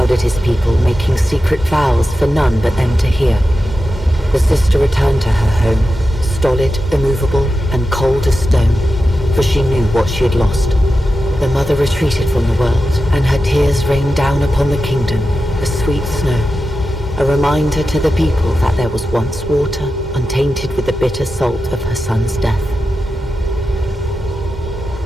his people, making secret vows for none but them to hear. The sister returned to her home, stolid, immovable, and cold as stone, for she knew what she had lost. The mother retreated from the world, and her tears rained down upon the kingdom, as sweet snow, a reminder to the people that there was once water, untainted with the bitter salt of her son's death.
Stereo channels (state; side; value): normal; both; correlation 0.91